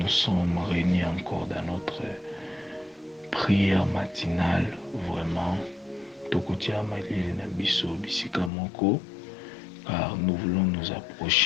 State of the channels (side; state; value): right; drops out; at 8.5 s